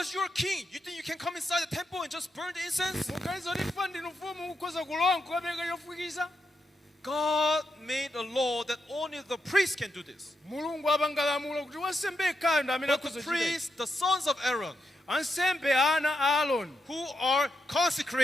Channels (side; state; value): both; normal; correlation 0.84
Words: you're a king. You think you can come inside the temple and just burn the incense? Mukaliza kuti fa ndinu mfumu mukhoza kulowa nkukapereka chofukiza. God made a law that only the priest can do this. Mulungu apanga lamulo kuti wansembe yekhayo ndi amene But the akhoza kuchita. priests, the sons of Aaron, Ansembe ana a Aaroni who are